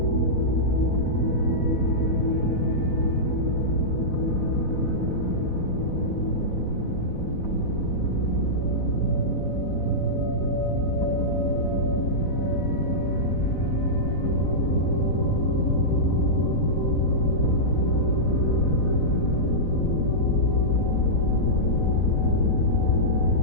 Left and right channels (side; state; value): right; late; 4.1 ms